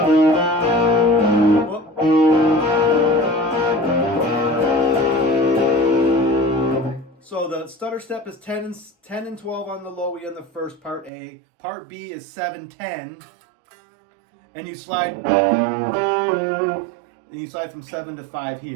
Whoop. So the stutter step is 10 and 12 on the low E on the first part A. Part B is 7-10, and you slide from 7 to 5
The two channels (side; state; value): left; drops out; at 11.1 s